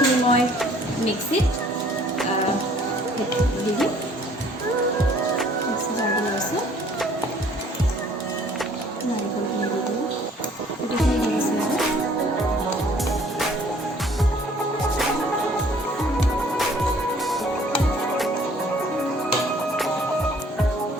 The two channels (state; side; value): normal; both; correlation 0.57